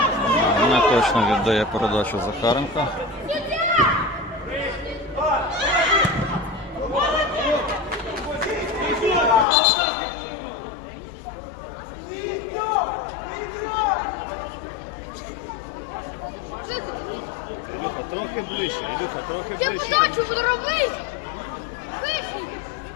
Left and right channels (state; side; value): drops out; right; at 9.5 s